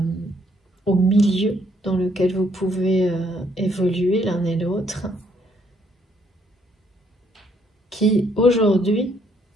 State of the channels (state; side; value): normal; both; correlation 0.69